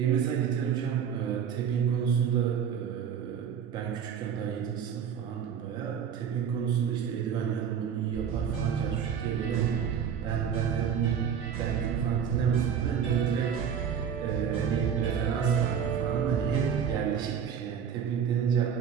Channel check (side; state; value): left; quieter; 7.8 dB